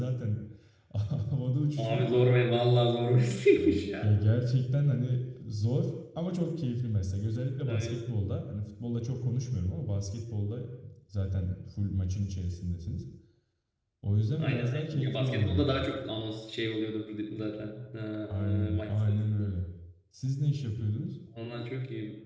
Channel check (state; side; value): identical; both; correlation 1.00